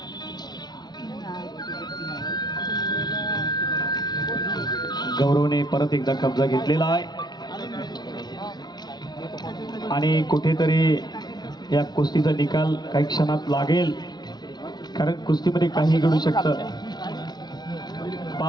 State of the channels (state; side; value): late; right; 0.20 ms